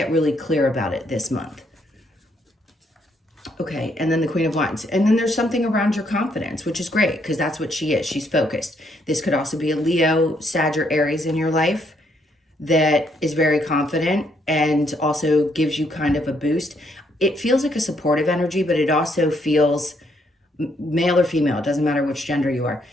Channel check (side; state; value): both; normal; correlation 0.72